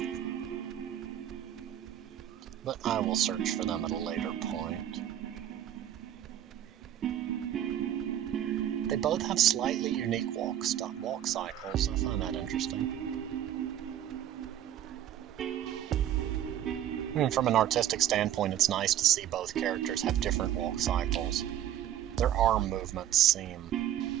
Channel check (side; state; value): left; quieter; 11.1 dB